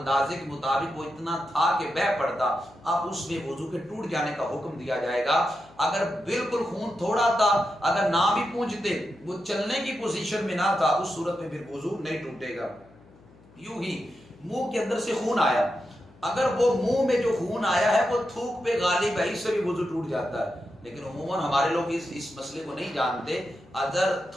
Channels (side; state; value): left; noise; hum, 26 dB below the sound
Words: کے مطابق وہ اتنا تھا کہ بہ پڑتا، اب اس میں وضو کے ٹوٹ جانے کا حکم دیا جائے گا. اگر بالکل خون تھوڑا تھا، اگر نہ بھی پونجھتے، وہ چلنے کی پوزیشن میں نہ تھا، اس صورت میں پھر وضو نہیں ٹوٹے گا. یوں ہی منہ کے اندر سے خون آیا، اگر وہ منہ میں جو خون آیا ہے وہ تھوک پہ غالب ہے، اس سے بھی وضو ٹوٹ جاتا ہے. لیکن عموماً ہمارے لوگ اس مسئلے کو نہیں جانتے. اگر